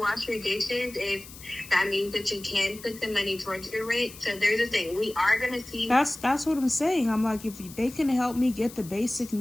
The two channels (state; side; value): noise; left; hiss, 17 dB below the sound